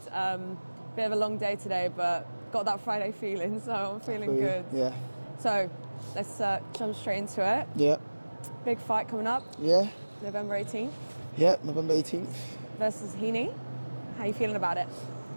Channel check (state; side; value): inverted; both; correlation -1.00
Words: Bit of a long day today, but got that Friday feeling, so I'm feeling good. Yeah. So let's jump straight into it. Yeah. Big fight coming up. Yeah. November 18th. Yeah, November 18th. Versus Heaney. How you feeling about it?